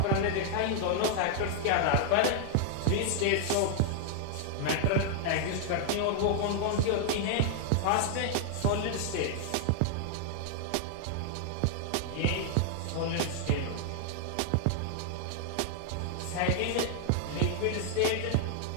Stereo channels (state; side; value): different; both; correlation 0.00